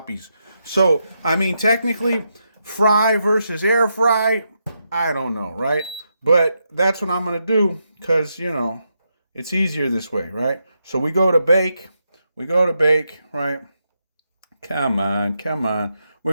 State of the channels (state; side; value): inverted; both; correlation -0.83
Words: So, I mean, technically, fry versus air fry, I don't know, right? But that's what I'm going to do because, it's easier this way, right? So we go to bake. Right? Come on. We're